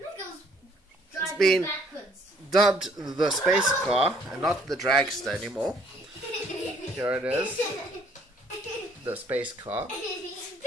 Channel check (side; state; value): both; normal; correlation 0.62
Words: It's been dubbed the space car and not the dragster anymore. Here it is. The space car.